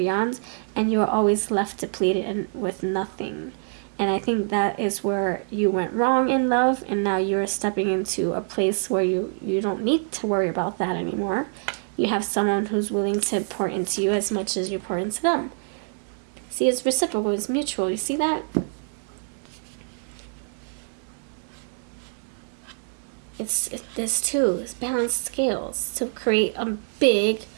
and you were always left depleted and with nothing. And I think that is where you went wrong in love, and now you're stepping into a place where you don't need to worry about that anymore. You have someone who's willing to pour into you as much as you pour into them. See, it's reciprocal, it's mutual. You see that? There's two. It's balanced scales to create a big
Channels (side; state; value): left; silent; digital silence